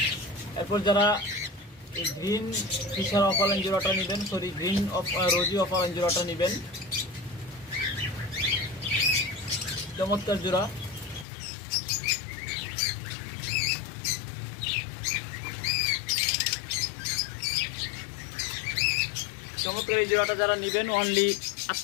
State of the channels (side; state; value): right; drops out; at 11.2 s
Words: এরপর যারা এই গ্রিন ফিশার অফালাইন জোড়াটা নেবেন, গ্রিন রোজি অফালাইন জোড়াটা নেবেন, চমৎকার জোড়া। চমৎকার এই জোড়াটা যারা নেবেন অনলি